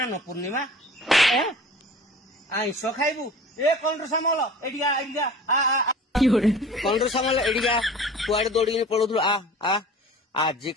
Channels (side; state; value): both; normal; correlation 0.42